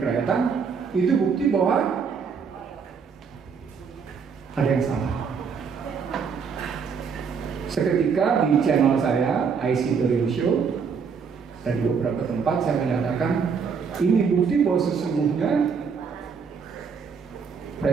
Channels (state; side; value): quieter; left; 6.0 dB